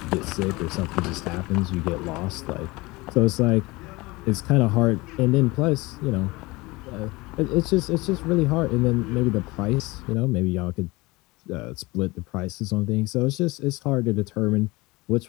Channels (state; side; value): quieter; right; 22.6 dB